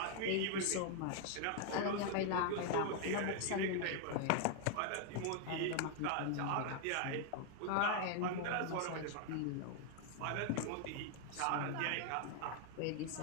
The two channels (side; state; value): both; different; correlation 0.00